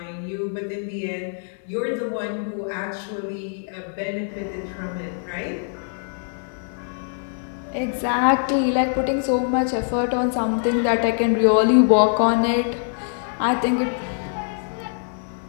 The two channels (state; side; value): silent; right; digital silence